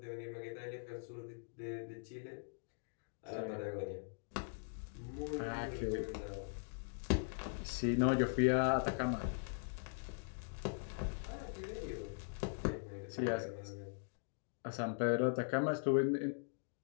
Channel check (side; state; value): right; silent; digital silence